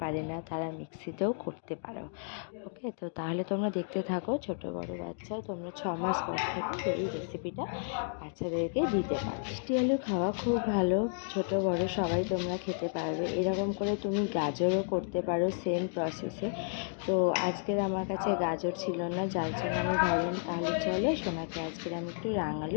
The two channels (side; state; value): right; silent; digital silence